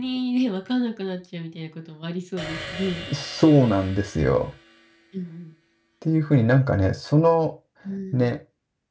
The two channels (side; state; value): both; identical; correlation 1.00